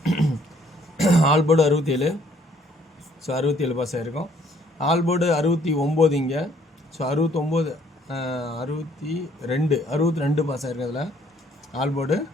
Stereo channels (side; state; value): both; normal; correlation 0.63